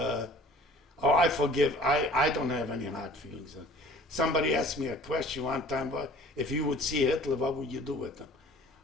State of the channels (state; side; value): normal; both; correlation 0.49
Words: forgive. I don't have any hard feelings. Somebody asked me a question one time, but if you would see Hitler, what would you do with him?